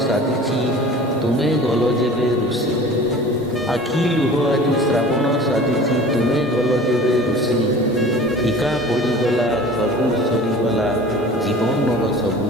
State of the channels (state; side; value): normal; both; correlation 0.42